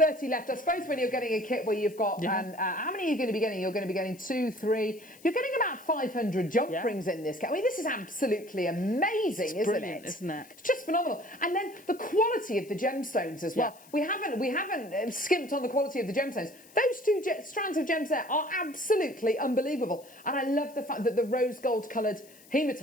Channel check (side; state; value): left; noise; hiss, 24 dB below the sound